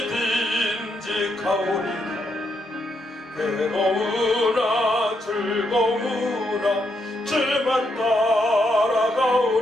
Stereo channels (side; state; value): both; normal; correlation 0.78